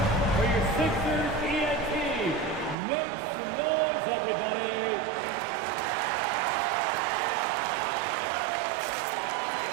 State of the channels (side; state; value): left; drops out; at 2.8 s